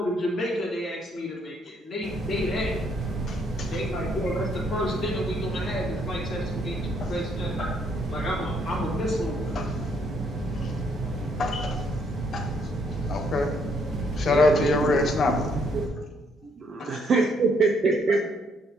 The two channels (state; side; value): normal; both; correlation 0.70